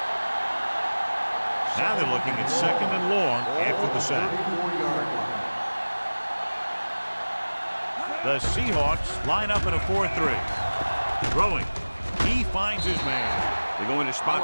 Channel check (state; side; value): inverted; both; correlation -1.00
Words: Now they're looking at second and long after the sack. 34-yard line. The Seahawks line up in a 4-3. Throwing. He finds his man. They're going to